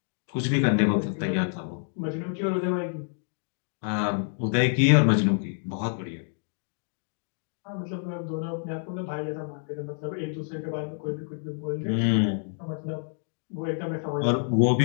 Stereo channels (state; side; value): silent; right; 60 dB below the other